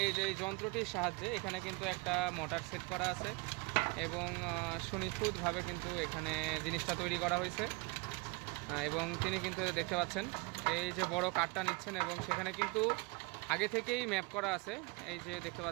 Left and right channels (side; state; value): left; quieter; 28.3 dB